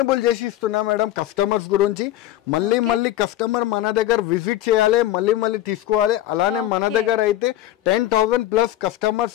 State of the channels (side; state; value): right; quieter; 13.6 dB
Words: చేసి ఇస్తున్నా మేడం కస్టమర్స్ గురించి. మళ్ళీ కస్టమర్ మన దగ్గర విజిట్ చేయాలి, మళ్ళీ తీసుకోవాలి. అలానే మన దగ్గర అయితే 10,000 ప్లస్